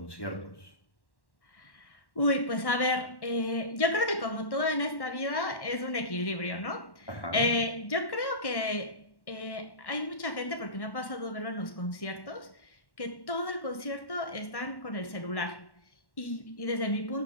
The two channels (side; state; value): right; late; 1.1 ms